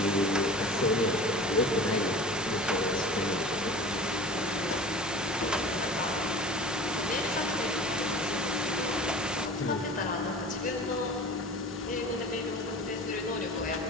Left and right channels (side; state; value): both; normal; correlation 0.39